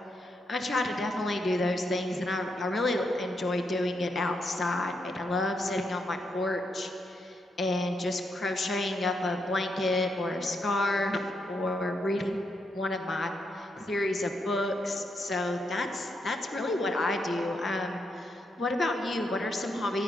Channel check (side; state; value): both; normal; correlation 0.80